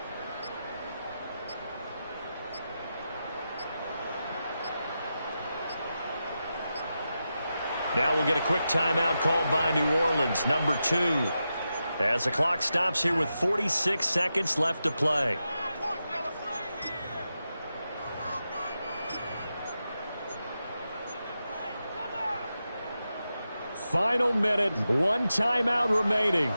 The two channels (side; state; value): both; inverted; correlation -0.89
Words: Now we'll get a quick timeout called by New Orleans, number 2. As the clock stops here with 46 seconds left to play. Final minute, 1 timeout remaining.